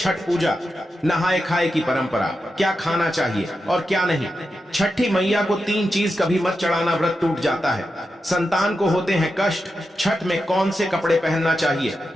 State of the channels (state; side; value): normal; both; correlation 0.89